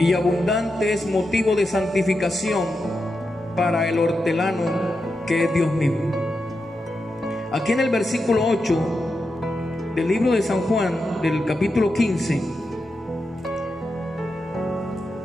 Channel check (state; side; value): normal; both; correlation 0.88